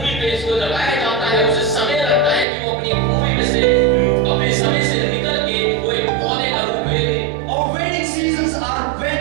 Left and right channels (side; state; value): left; drops out; at 2.5 s